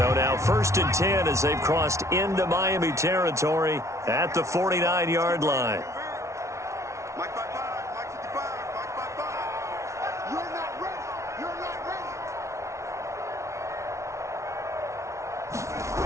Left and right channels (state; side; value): late; left; 0.14 ms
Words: now 1st and 10 as they've crossed into Miami territory at the 49-yard line. Mike 55, Mike 55, Mike 55. You're not ready. You're not